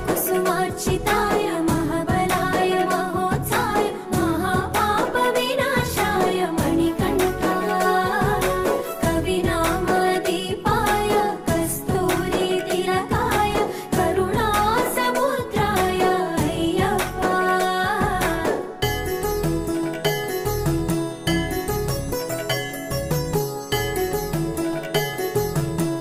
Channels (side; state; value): both; identical; correlation 1.00